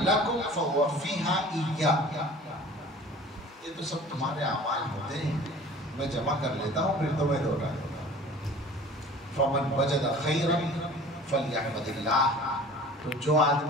لکم فوفیھا ایایا، یہ تو سب تمہارے اعمال ہوتے ہیں، میں جمع کر لیتا ہوں پھر تمہیں دوہرا دوں گا۔ فمن وجد خیرا فلیحمد اللہ، تو جو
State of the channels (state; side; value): normal; both; correlation 0.44